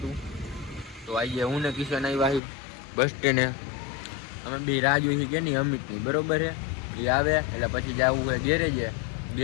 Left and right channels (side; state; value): right; drops out; at 2.4 s